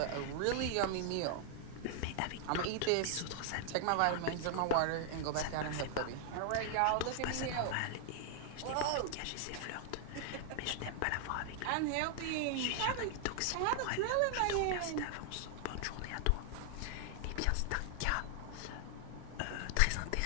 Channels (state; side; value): different; both; correlation 0.00